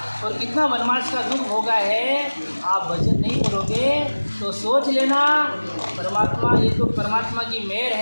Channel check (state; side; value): inverted; both; correlation -1.00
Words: और कितना वनवास का दुख होगा है, आप भजन नहीं करोगे तो सोच लेना परमात्मा, ये तो परमात्मा की मेहर